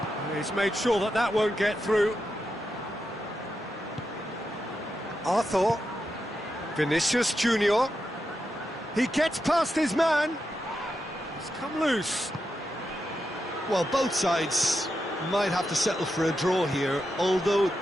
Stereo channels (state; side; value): normal; both; correlation 0.87